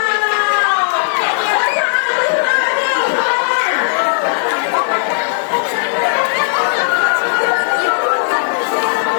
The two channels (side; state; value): right; silent; digital silence